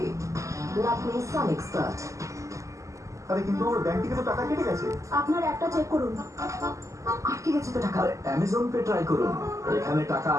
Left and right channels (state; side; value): late; left; 0.15 ms